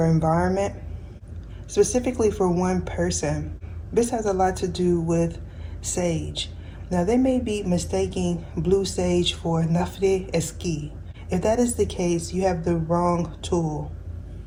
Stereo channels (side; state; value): both; identical; correlation 1.00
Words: environment, specifically for one person. This has a lot to do with sage. Now they may be mistaking blue sage for Nafre Eski. If that is the case, you have the wrong tool.